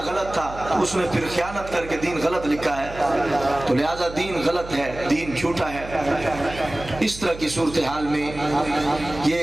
गलत था तो उसने फिर खयानत करके दीन गलत लिखा है, तो लिहाजा दीन गलत है, दीन झूठा है। इस तरह की सूरत हाल में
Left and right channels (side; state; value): right; noise; hum, 13 dB below the sound